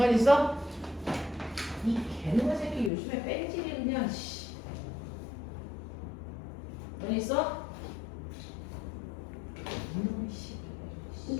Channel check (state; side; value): drops out; right; at 2.9 s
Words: 있어? 이 개놈의 새끼 요즘에 뺀질이 그냥 씨. 넌 있어? 이놈의 씨.